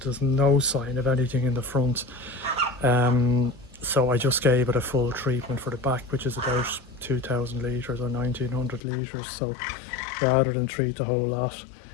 There's no sign of anything in the front. So I just gave it a full treatment for the back, which is about 2,000 litres or 1,900 litres. So rather than treat the whole lot,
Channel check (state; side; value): drops out; right; at 8.8 s